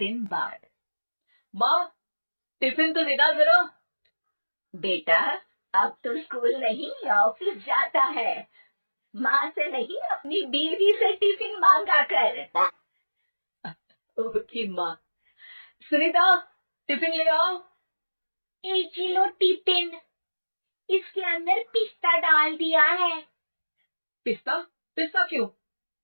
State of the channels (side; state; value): both; inverted; correlation -1.00